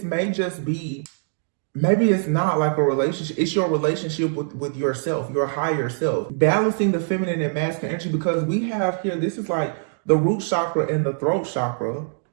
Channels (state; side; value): silent; left; digital silence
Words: may just be, maybe it's not like a relationship. It's your relationship with yourself, your higher self. Balancing the feminine and masculine energy, because we have here, this is like the root chakra and the throat chakra,